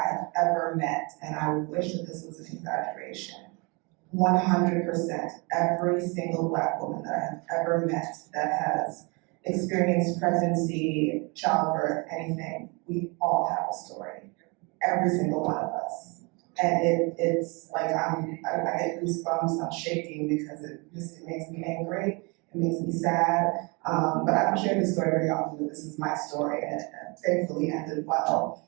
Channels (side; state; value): left; quieter; 29.8 dB